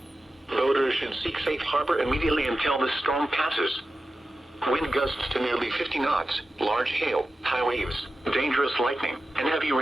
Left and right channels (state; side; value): normal; both; correlation 0.93